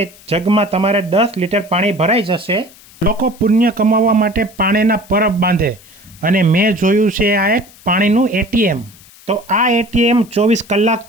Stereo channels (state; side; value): noise; left; hiss, 24 dB below the sound